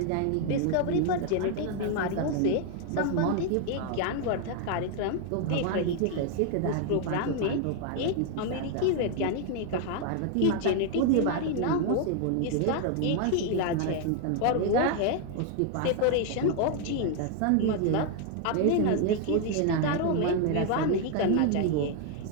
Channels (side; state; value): both; different; correlation 0.00